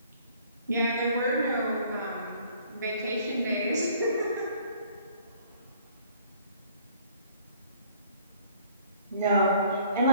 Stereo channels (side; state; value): both; inverted; correlation -0.57